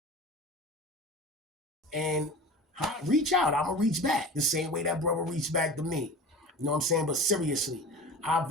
And reach out. I'm gonna reach back the same way that brother reached back to me. You know what I'm saying? But seriously, I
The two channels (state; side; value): normal; both; correlation 0.35